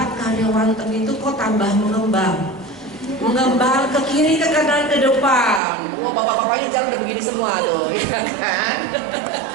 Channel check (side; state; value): left; drops out; at 5.6 s